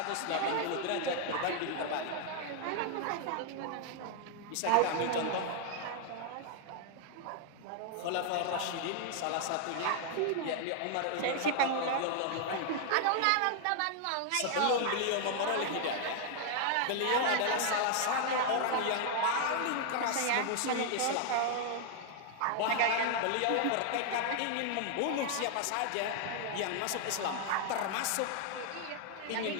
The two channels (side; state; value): both; different; correlation 0.00